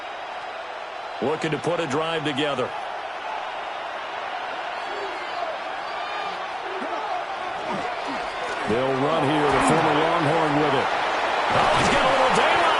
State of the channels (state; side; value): identical; both; correlation 1.00